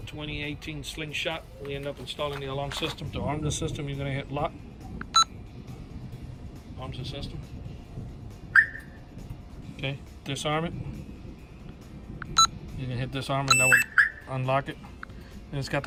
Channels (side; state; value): both; identical; correlation 1.00